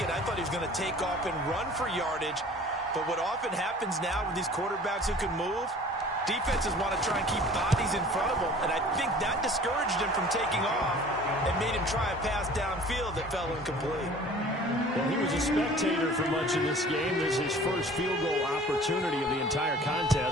I thought he was going to take off and run for yardage. But what often happens now with these quarterbacks who can move, defenses want to try and keep bodies in front of them, and I think that discouraged him from taking off and made him try a pass downfield that fell incomplete. Well, he was a spectator for much of this game. This is his first field goal opportunity of the entire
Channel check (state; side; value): normal; both; correlation 0.47